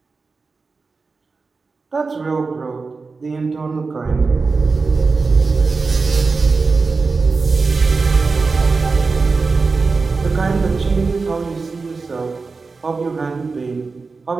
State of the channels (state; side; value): quieter; left; 4.3 dB